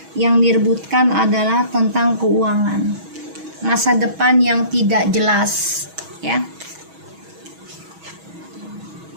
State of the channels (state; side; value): late; left; 6.2 ms